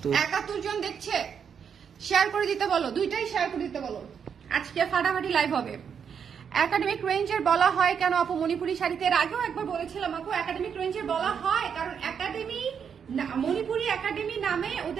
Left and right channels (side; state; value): left; quieter; 7.2 dB